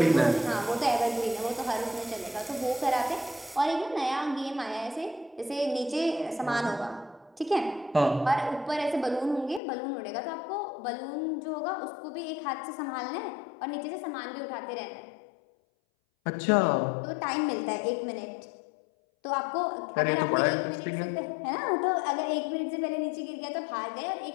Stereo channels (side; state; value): right; drops out; at 9.6 s